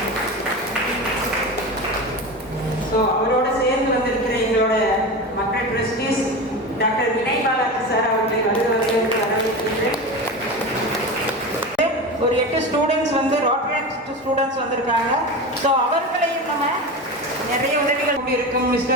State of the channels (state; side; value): normal; both; correlation 0.25